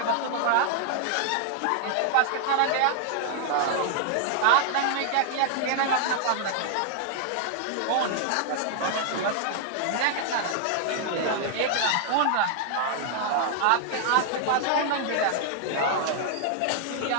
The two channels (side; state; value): both; different; correlation 0.00